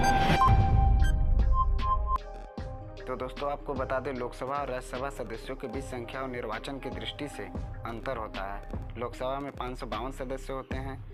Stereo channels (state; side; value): identical; both; correlation 1.00